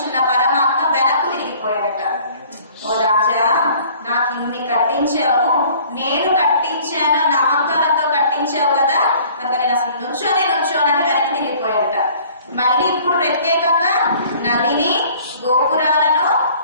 పరమాత్మ వెనక్కు తిరిగిపోయాడట. ఓ రాజా, నాకు ఇన్ని కట్టించావు, నేను కట్టించాను నా అహంకారంతో కట్టించావు కదా, కనుక నేను అసలు నుంచోనని వెనక్కి తిరిగిపోయాడట. మళ్ళీ ఇప్పుడు ప్రత్యేకంగా నదిని, గోపురాలను,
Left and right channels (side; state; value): both; inverted; correlation -0.52